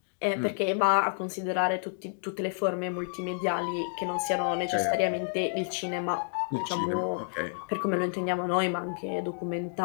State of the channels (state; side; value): silent; right; digital silence